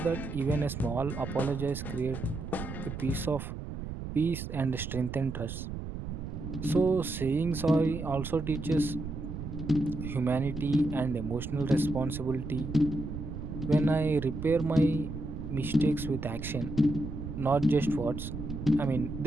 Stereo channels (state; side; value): noise; right; rumble, 7 dB below the sound